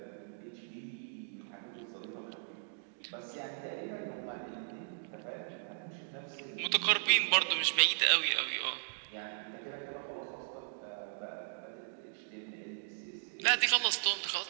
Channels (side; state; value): left; silent; digital silence